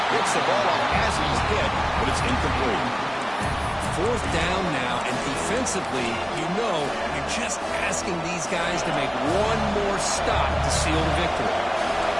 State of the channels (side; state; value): both; identical; correlation 1.00